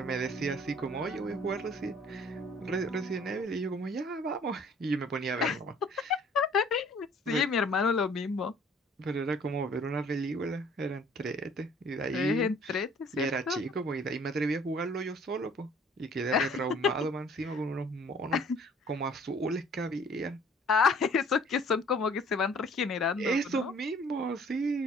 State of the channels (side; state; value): both; normal; correlation 0.55